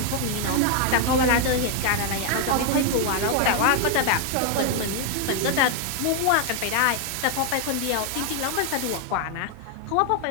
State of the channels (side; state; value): both; different; correlation 0.00